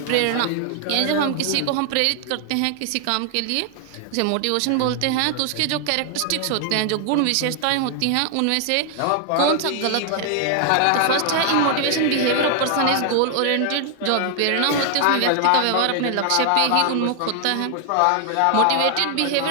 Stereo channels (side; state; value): both; different; correlation 0.00